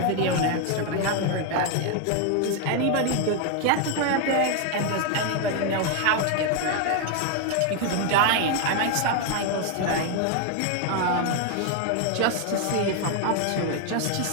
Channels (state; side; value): different; both; correlation 0.01